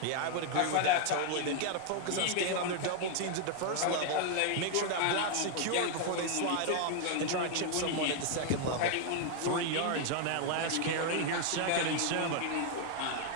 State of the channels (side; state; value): both; different; correlation 0.00